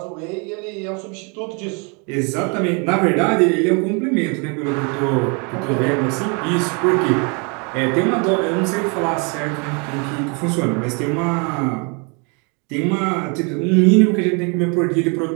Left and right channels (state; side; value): quieter; left; 33.6 dB